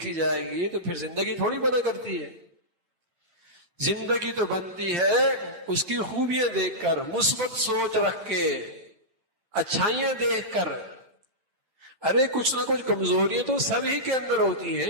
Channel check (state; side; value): late; left; 8.9 ms